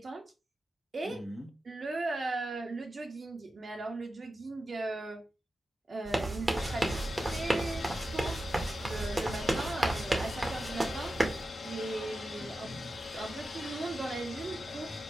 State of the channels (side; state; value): both; normal; correlation 0.91